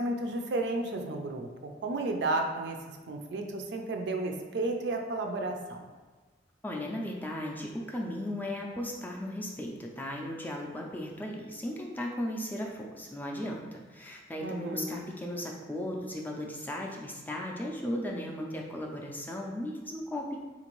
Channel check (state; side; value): normal; both; correlation 0.44